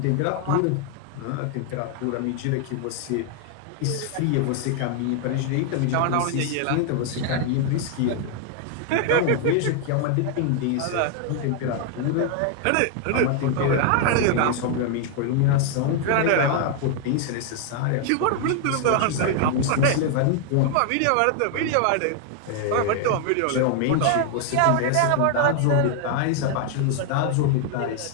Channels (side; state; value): both; different; correlation 0.00